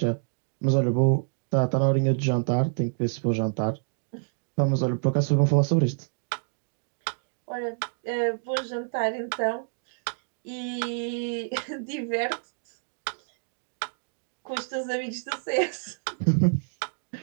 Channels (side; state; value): left; silent; digital silence